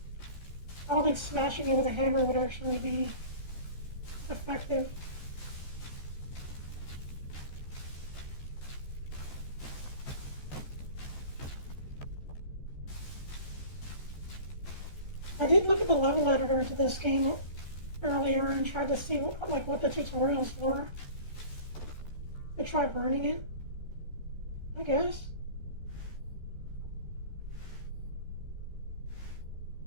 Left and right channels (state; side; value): late; right; 14 ms